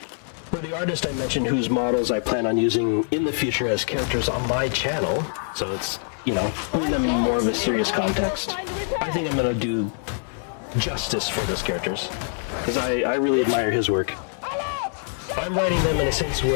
the artist I mentioned whose models I plan on using in the future as characters on my channel, so it's, putting them in more of a serious context, I think I'm gonna do justice for those characters, because I really admire his work. I'm writing them in a sense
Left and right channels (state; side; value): silent; right; digital silence